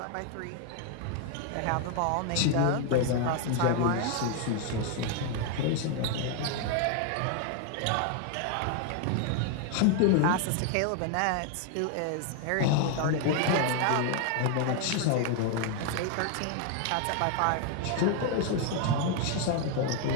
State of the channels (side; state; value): both; different; correlation 0.00